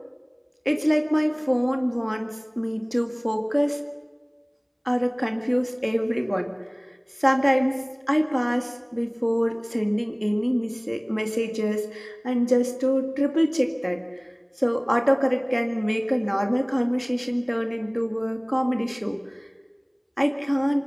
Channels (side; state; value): both; identical; correlation 1.00